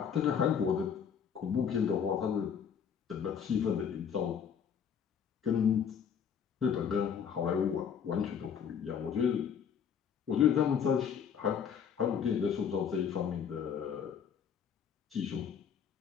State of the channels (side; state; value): right; quieter; 7.5 dB